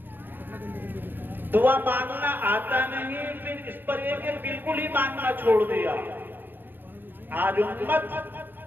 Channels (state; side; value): late; left; 0.094 ms